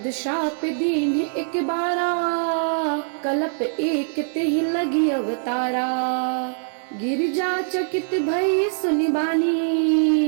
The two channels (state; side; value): silent; left; 63 dB below the other